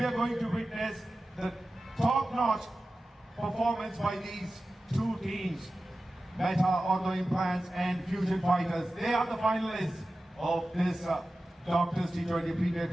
are going to witness the top-notch performance by these two teams, Meta, Ortho Implants and Fusion Fighters. They are the finalists of this Doctors T20 Premier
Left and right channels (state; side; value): normal; both; correlation 0.95